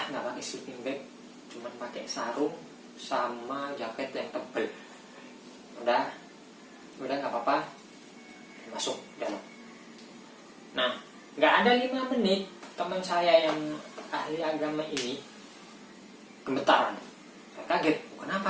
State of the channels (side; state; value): both; identical; correlation 1.00